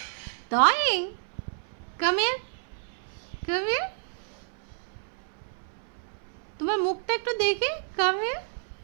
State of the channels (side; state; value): left; silent; 58 dB below the other